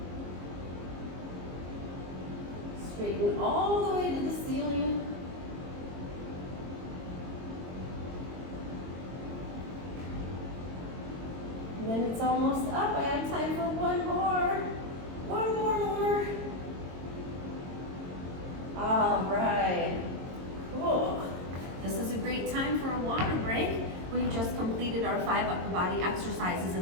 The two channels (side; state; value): left; late; 22 ms